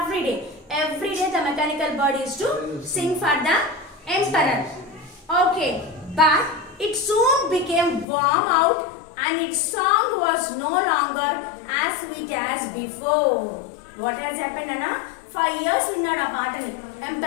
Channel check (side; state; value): right; drops out; at 8.1 s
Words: day. Every day the mechanical bird used to sing for the emperor. Okay, but it soon became warm out and its song was no longer as sweet as before. What has happened, Anna? 5 years విన్నాడు ఆ పాటని